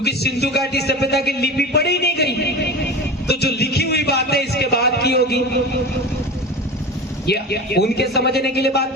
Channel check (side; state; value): both; normal; correlation 0.30